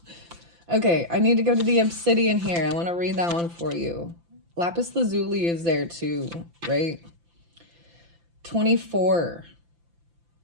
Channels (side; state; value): left; late; 5.9 ms